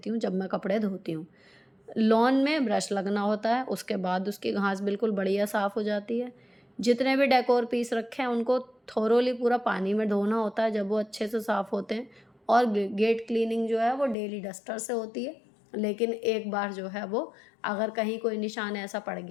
हूँ जब मैं कपड़े धोती हूँ। लॉन में ब्रश लगना होता है, उसके बाद उसकी घास बिल्कुल बढ़िया साफ़ हो जाती है। जितने भी डेकोर पीस रखे हैं उनको थोरोली पूरा पानी में धोना होता है जब वो अच्छे से साफ़ होते हैं। और गेट क्लीनिंग जो है वो डेली डस्टर से होती है, लेकिन एक बार जो है वो अगर कहीं कोई निशान ऐसा पड़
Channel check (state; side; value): drops out; right; at 14.2 s